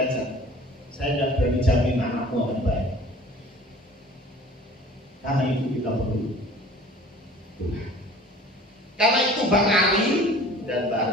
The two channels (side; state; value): both; normal; correlation 0.47